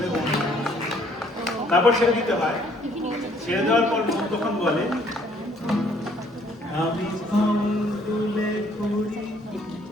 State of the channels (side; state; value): both; normal; correlation 0.63